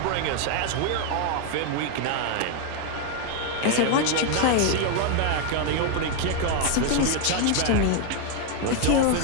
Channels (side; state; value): both; different; correlation 0.01